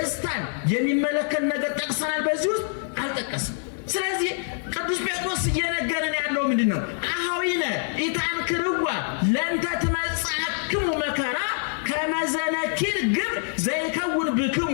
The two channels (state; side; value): silent; right; digital silence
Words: የሚመለከት ነገር ጠቅሰናል። በዚህ ውስጥ አልጠቀስም። ስለዚህ ቅዱስ ጴጥሮስ እየነገረን ያለው ምንድን ነው? አኀዊነ ኢታንክርዋ ለእንተ ትመጽአክሙ መከራ ከመ ዘነኪር ግብር ዘይከውን ብክሙ።